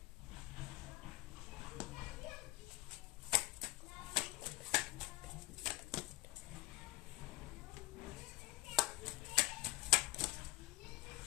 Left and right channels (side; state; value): right; quieter; 20.7 dB